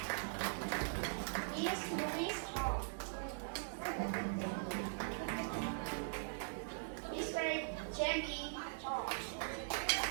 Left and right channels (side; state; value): left; silent; digital silence